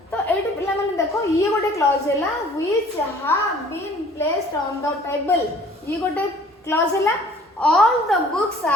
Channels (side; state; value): both; normal; correlation 0.52